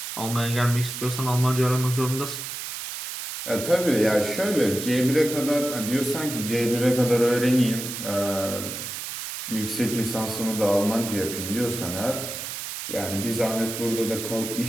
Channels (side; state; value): right; noise; hiss, 7 dB below the sound